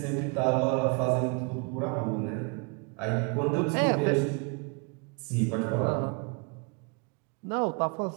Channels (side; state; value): left; quieter; 33.8 dB